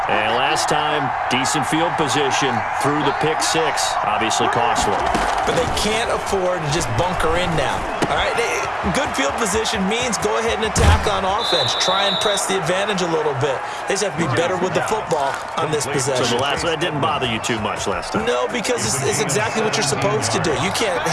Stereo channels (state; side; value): identical; both; correlation 1.00